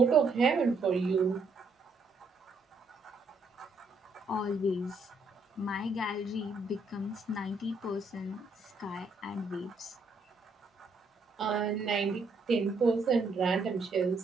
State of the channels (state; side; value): quieter; left; 3.5 dB